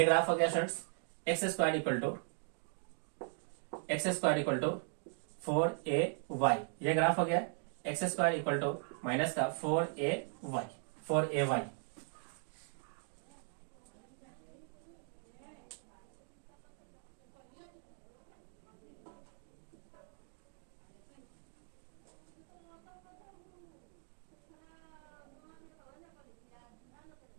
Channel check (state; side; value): silent; left; 52 dB below the other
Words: ग्राफ हो गया students x square equal to 4ay। ये ग्राफ हो गया x square equal to minus का 4ay।